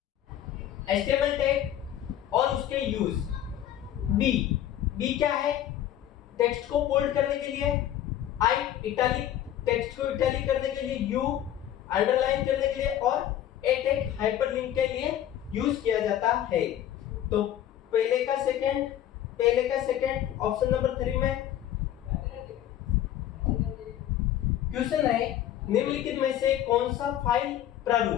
HTML tag और उसके यूज। बी क्या है? टेक्स्ट को बोल्ड करने के लिए, आई इटैलिक टेक्स्ट को इटैलिक करने के लिए, यू अंडरलाइन करने के लिए, और ए टैग हाइपरलिंक के लिए यूज किया जाता है। तो पहले का सेकंड ऑप्शन नंबर 3 में। क्वेश्चन है निम्नलिखित में से कौन सा फाइल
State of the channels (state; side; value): quieter; right; 11.6 dB